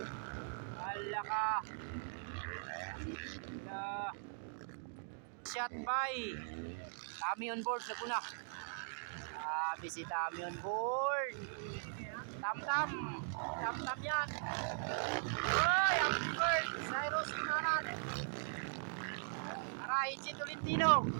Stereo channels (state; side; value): silent; left; digital silence